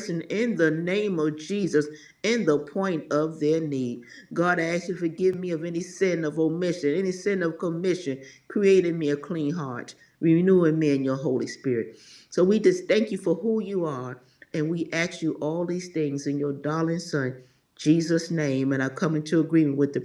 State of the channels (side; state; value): both; identical; correlation 1.00